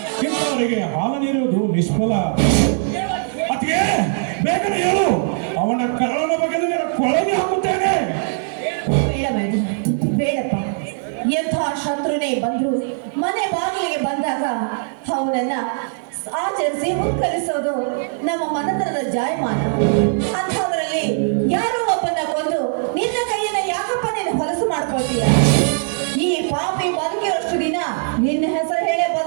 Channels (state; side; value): silent; left; digital silence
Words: ಇಂಥವರಿಗೆ ಹಾಲು ನೀರುವುದು ನಿಷ್ಫಲ. ಅತ್ತಿಗೆ, ಬೇಗನೆ ಹೇಳು, ಅವನ ಕರಳನ ಬಗೆದು ನಿನ್ನ ಕೊಳಗೆ ಹಾಕುತ್ತೇನೆ. ಬೇಡ ಮೇಡಮ್, ಬೇಡಪ್ಪ. ಎಂಥ ಶತ್ರುನೇ ಬಂದ್ರು ಮನೆ ಬಾಗಿಲಿಗೆ ಬಂದಾಗ ಅವನನ್ನ ಆಚರಿಸಿ ಮುತ್ಕರಿಸೋದು ನಮ್ಮ ಮನತನದ ಜಾಯಮಾನ. ಅಂಥದ್ರಲ್ಲಿ ಯಾರೋ ಒಬ್ಬನ ಕೊಂದು ನಿನ್ನ ಕೈಯನ್ನ ಯಾಕಪ್ಪ ನೀನು ಹೊಲಸು ಮಾಡ್ಕೊಳ್ತೀಯ? ಈ ಪಾಪಿ ಬದುಕಿರೋಷ್ಟು ದಿನ ನಿನ್ನ ಹೆಸರು ಹೇಳೇ